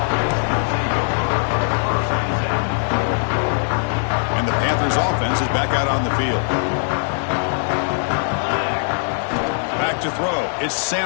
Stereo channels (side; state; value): right; silent; 65 dB below the other